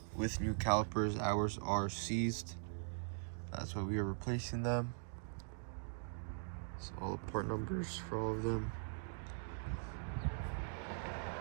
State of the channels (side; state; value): left; silent; digital silence